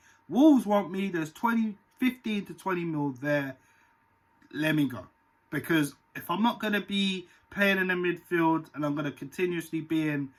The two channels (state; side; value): identical; both; correlation 1.00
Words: Wolves want me, there's 15 to 20 mil there, let me go. Because if I'm not going to be playing in the midfield and I'm going to continuously be in